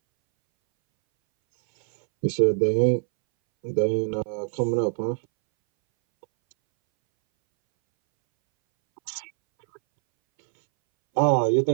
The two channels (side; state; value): left; silent; 63 dB below the other